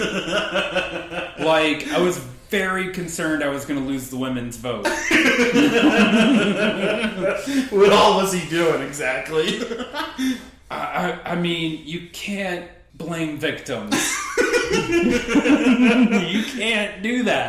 Like, I was very concerned I was going to lose the women's vote. What all was he doing exactly? I mean, you can't blame victims. You can't do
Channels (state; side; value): identical; both; correlation 1.00